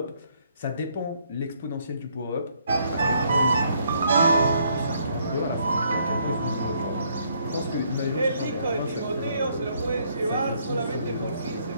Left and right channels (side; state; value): both; inverted; correlation -0.69